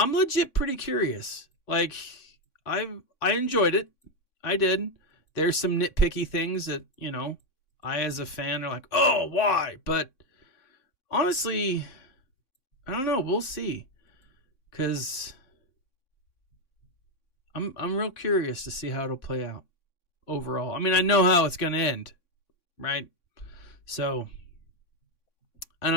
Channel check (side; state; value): right; late; 3.6 ms